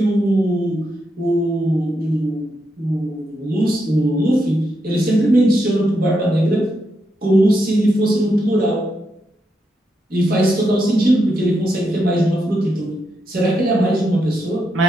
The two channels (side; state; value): both; normal; correlation 0.82